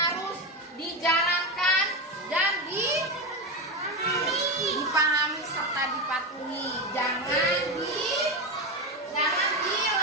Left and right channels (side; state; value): both; normal; correlation 0.15